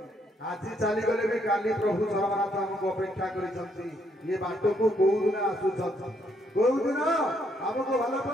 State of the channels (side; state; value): both; normal; correlation 0.72